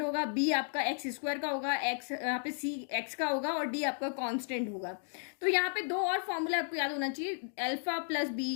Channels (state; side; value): silent; right; digital silence